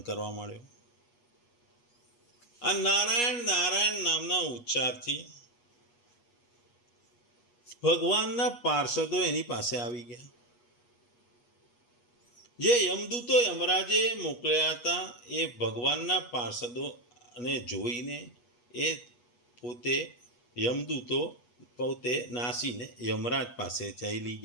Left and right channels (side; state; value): right; late; 8.3 ms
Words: કરવા માંડ્યો. આ નારાયણ નારાયણ નામના ઉચ્ચારથી ભગવાનના પાર્ષદો એની પાસે આવી ગયા. જે યમદૂતો યમરાજે મોકલ્યા હતા એ ભગવાનના પાર્ષદોને જોઈને એ પોતે યમદૂતો પોતે નાસીને યમરાજ પાસે ચાલી